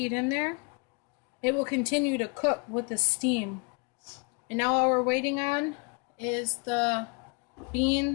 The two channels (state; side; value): quieter; right; 33.3 dB